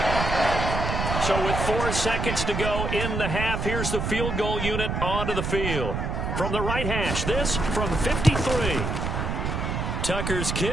So with 4 seconds to go in the half, here's the field goal unit onto the field. From the right hash, this from 53. Tucker's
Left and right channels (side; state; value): right; noise; rumble, 2 dB below the sound